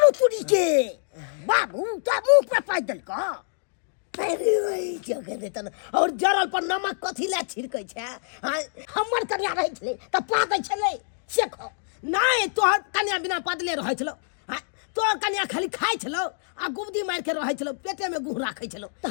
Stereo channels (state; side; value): silent; right; digital silence